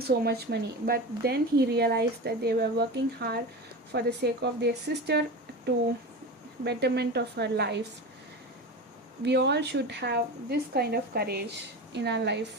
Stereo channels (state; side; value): normal; both; correlation 0.27